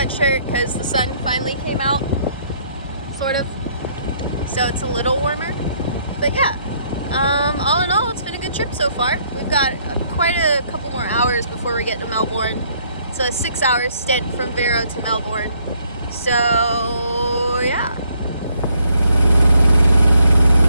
because the sun finally came out, sort of. So it's a little warmer. But yeah, all in all, it's been a good trip so far. We've got quite a couple more hours before we get to Melbourne. It's a 6-hour stint from Vero to Melbourne. So yeah.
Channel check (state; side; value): inverted; both; correlation -0.68